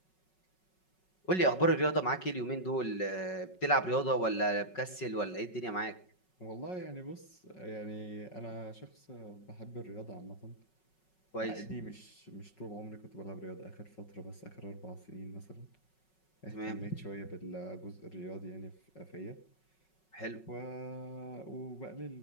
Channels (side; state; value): right; late; 5.4 ms